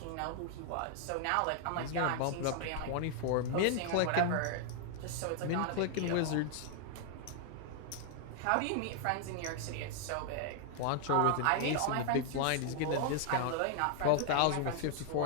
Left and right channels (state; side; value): different; both; correlation 0.00